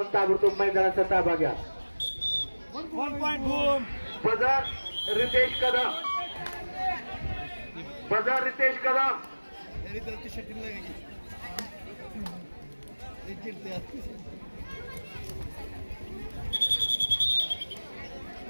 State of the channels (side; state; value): both; inverted; correlation -1.00